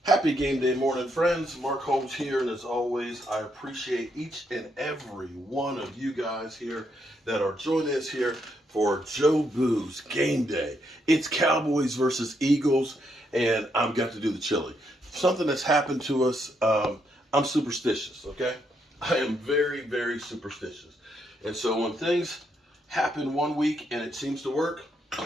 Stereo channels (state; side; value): normal; both; correlation 0.77